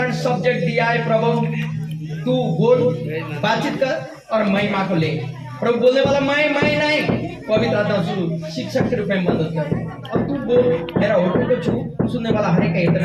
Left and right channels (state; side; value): identical; both; correlation 1.00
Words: सब्जेक्ट दिया है प्रभु। तू बोल, बातचीत कर और महिमा को ले प्रभु। बोलने वाला मैं नहीं, पवित्र आत्मा शिक्षक के रूप में मदद कर। अब तू बोल, मेरा होठों को छू, सुनने वाला हर एक